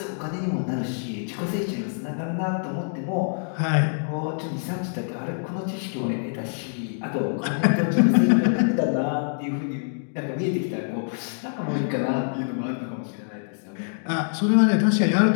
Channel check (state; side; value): silent; right; digital silence